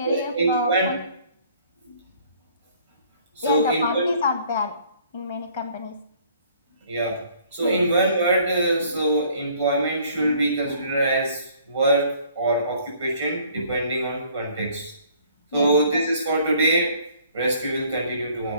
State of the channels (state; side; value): inverted; both; correlation -0.59